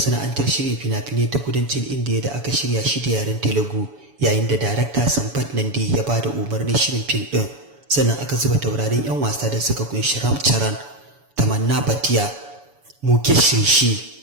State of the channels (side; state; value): left; late; 7.1 ms